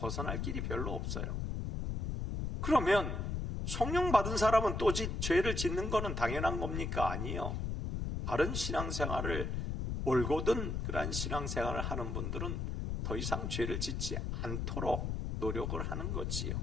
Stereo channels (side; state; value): left; noise; rumble, 2 dB below the sound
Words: 길이 별로 없어요. 그러면 성령 받은 사람은 또 죄를 짓는 것은 당연한 겁니까? 아니요. 바른 신앙생활을 올곧은 그러한 신앙생활을 하는 분들은 더 이상 죄를 짓지 않도록 노력을 하는 거지요.